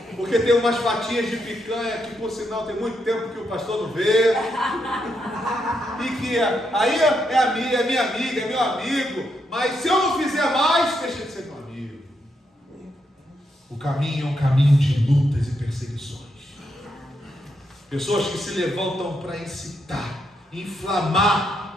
Porque tem umas fatias de picanha que, por sinal, tem muito tempo que o pastor não vê. E que aí é minha amiga, é meu amigo. Mas se eu não fizer mais, deixa de ser meu amigo. O caminho é um caminho de lutas e perseguições. Pessoas que se levantam para incitar,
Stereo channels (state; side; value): normal; both; correlation 0.80